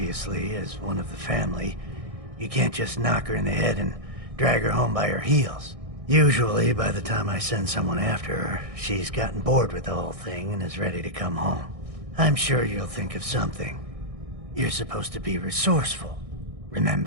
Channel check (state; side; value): late; left; 1.6 ms